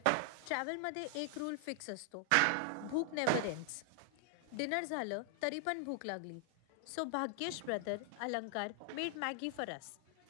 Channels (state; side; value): different; both; correlation 0.00